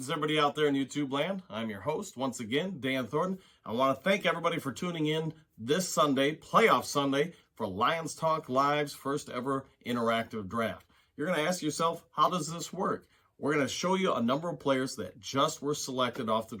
everybody out there in YouTube land. I'm your host, once again, Dan Thornton. I want to thank everybody for tuning in this Sunday, Playoff Sunday, for Lions Talk Live's first ever interactive draft. You're going to ask yourself, how does this work? We're going to show you a number of players that just were selected off the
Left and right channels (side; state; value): both; identical; correlation 1.00